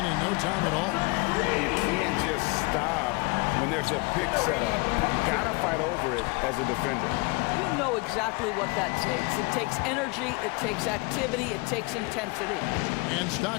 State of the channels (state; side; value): quieter; right; 27.6 dB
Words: no time at all. You can't just stop when there's a pick set up. You gotta fight over it as a defender. You know exactly what that takes. It takes energy, it takes activity, it takes intensity. And